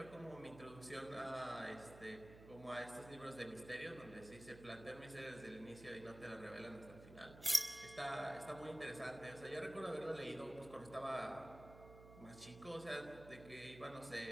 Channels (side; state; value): right; noise; hum, 15 dB below the sound